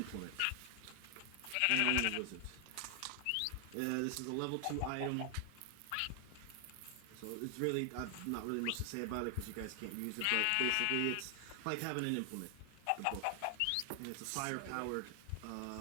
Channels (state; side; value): different; both; correlation 0.00